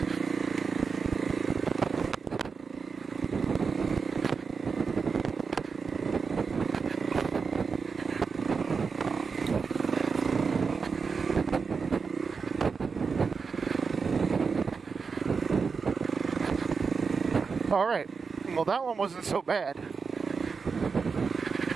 Alright, well that one wasn't so bad.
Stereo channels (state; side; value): quieter; left; 5.2 dB